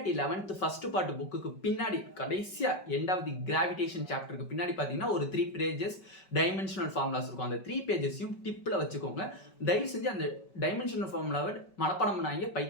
11th ஃபர்ஸ்ட் பார்ட் புக்குக்கு பின்னாடி கடைசியாக எண்ட் ஆஃப் தி கிராவிடேஷன் சாப்டருக்கு பின்னாடி பார்த்தீங்கன்னா ஒரு 3 pages டைமென்ஷனல் ஃபார்முலாஸ் இருக்கும். அந்த 3 pagesயும் டிப்பில் வச்சுக்கோங்க. தயவு செஞ்சு அந்த டைமென்ஷனல் ஃபார்முலாவை மனப்பாடம் பண்ணாங்க,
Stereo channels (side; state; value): right; late; 5.3 ms